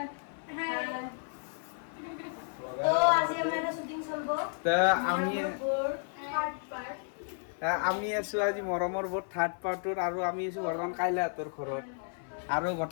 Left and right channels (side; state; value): right; silent; 56 dB below the other